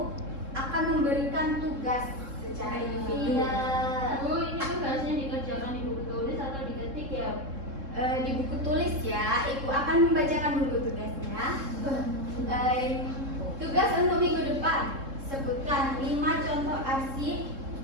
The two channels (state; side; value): late; left; 3.7 ms